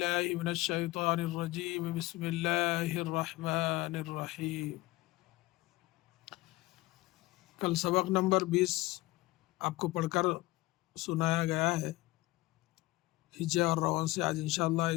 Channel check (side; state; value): right; quieter; 19.9 dB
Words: من الشيطان الرجيم بسم الله الرحمن الرحيم. کل سبق نمبر 20 آپ کو پڑھ کر سنایا گیا ہے ہجے اور روان سے. آج انشاءاللہ